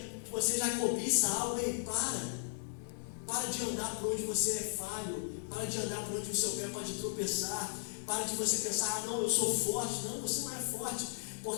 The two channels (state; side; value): silent; right; 54 dB below the other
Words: que você já cobiça algo, ei, para de andar por onde você é falho, para de andar por onde o seu pé pode tropeçar, para de você pensar, não, eu sou forte. Não, você não é forte,